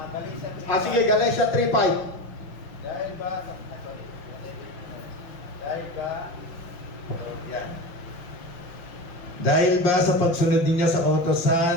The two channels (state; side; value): late; right; 6.0 ms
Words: Sige, Galatia 3:5. Dahil ba sa pagsunod ninyo sa